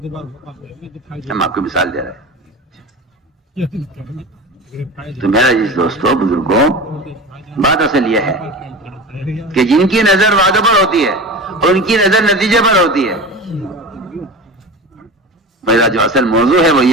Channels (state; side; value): normal; both; correlation 0.31